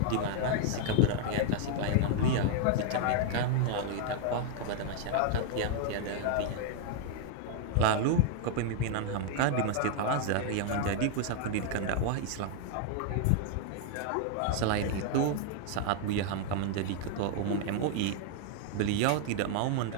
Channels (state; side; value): different; both; correlation 0.00